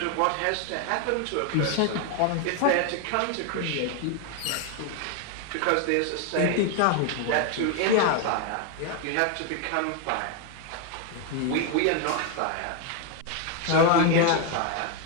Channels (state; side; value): different; both; correlation 0.01